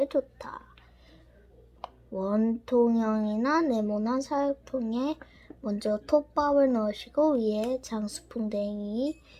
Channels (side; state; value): both; identical; correlation 1.00